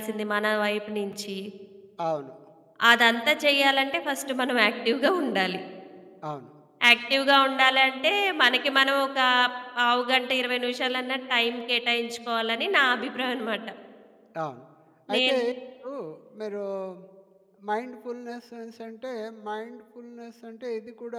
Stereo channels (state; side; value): identical; both; correlation 1.00